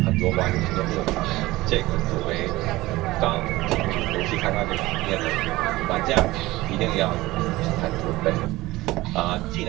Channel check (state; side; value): quieter; left; 18.9 dB